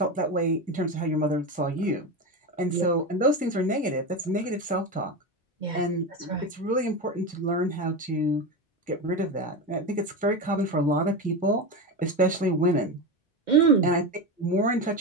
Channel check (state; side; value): normal; both; correlation 0.19